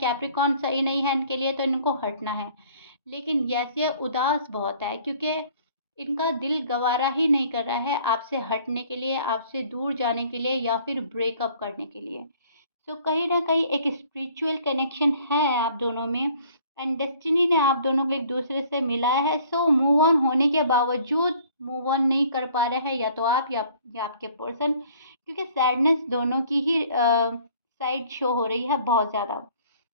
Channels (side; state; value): both; inverted; correlation -0.56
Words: सही नहीं है इनके लिए तो इनको हटना है। लेकिन यस ये उदास बहुत है क्योंकि इनका दिल गवारा ही नहीं कर रहा है आपसे हटने के लिए, आपसे दूर जाने के लिए या फिर ब्रेकअप करने के लिए। सो कहीं ना कहीं एक स्पिरिचुअल कनेक्शन है आप दोनों में एंड डेस्टिनी ने आप दोनों को एक दूसरे से मिलाया है। सो मूव ऑन होने के बावजूद मूव ऑन नहीं कर पा रहे हैं, या तो आप या आपके पर्सन, क्योंकि सैडनेस दोनों की ही साइड शो हो रही है बहुत ज़्यादा।